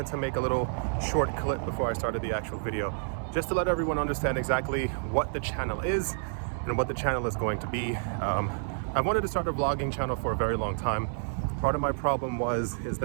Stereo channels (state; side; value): silent; left; digital silence